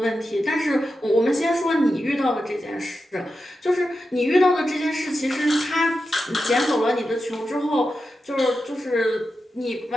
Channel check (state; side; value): normal; both; correlation 0.90